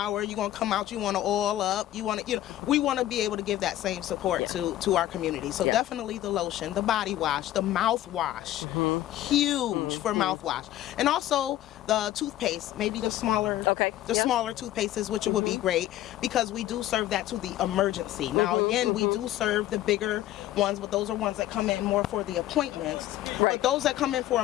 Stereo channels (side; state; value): right; quieter; 13.7 dB